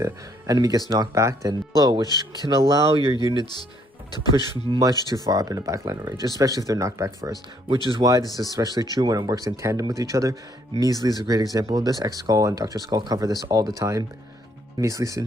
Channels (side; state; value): both; normal; correlation 0.68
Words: enemy gets knocked back. Then slow, which can allow your units to push much too far up into backliner range, especially if they're knocked back first, which is why this is especially true when it works in tandem with each other. Measly is a great example of this. X-Skull and Dr. Skull cover this all the time. Measly